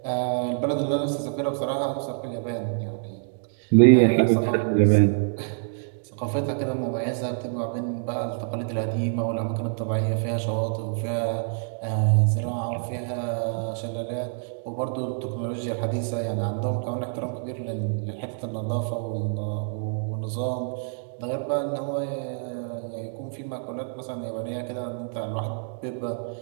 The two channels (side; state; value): left; silent; digital silence